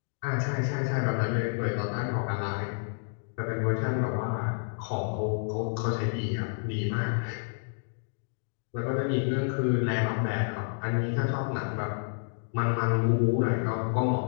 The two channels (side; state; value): right; silent; digital silence